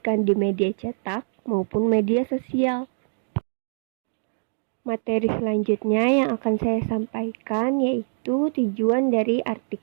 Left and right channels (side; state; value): left; silent; digital silence